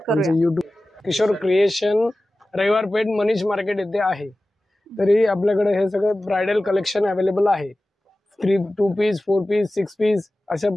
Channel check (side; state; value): both; normal; correlation 0.96